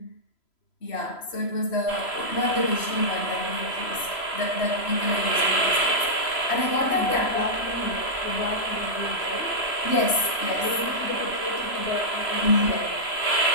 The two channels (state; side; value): late; right; 3.0 ms